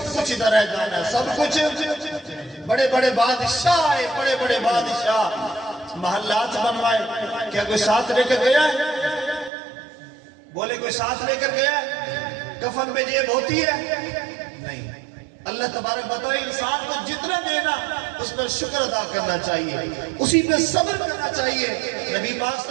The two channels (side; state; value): left; drops out; at 9.5 s